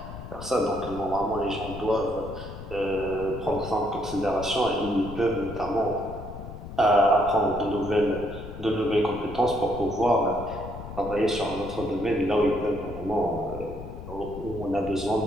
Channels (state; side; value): noise; left; rumble, 11 dB below the sound